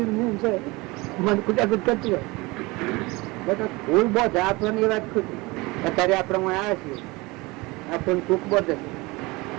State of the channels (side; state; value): left; quieter; 23.6 dB